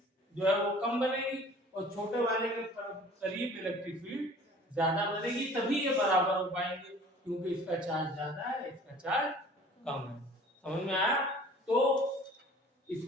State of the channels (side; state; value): both; normal; correlation 0.48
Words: जो है वो कम बनेगी और छोटे वाले के करीब इलेक्ट्रिक फील्ड ज्यादा बनेगी, तभी ये बराबर हो पाएंगे, क्योंकि इसका चार्ज ज्यादा है इसका चार्ज कम है। समझ में आया? तो